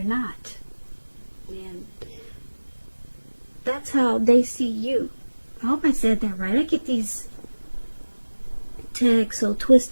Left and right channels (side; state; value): both; inverted; correlation -1.00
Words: not. And that's how they see you. I hope I said that right. I get these tags so